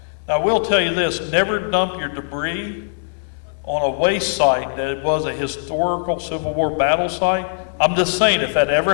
Now, I will tell you this, never dump your debris on a waste site that it was a historical Civil War battle site. I'm just saying, if that ever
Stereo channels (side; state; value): right; silent; 62 dB below the other